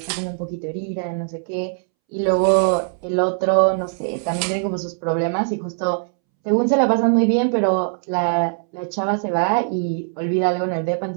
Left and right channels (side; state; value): left; silent; 65 dB below the other